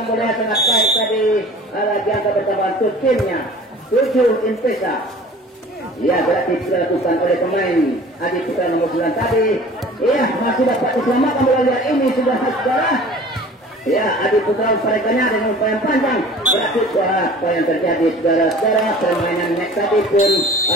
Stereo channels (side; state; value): both; normal; correlation 0.45